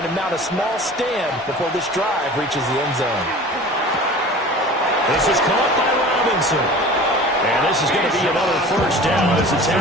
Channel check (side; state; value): both; normal; correlation 0.41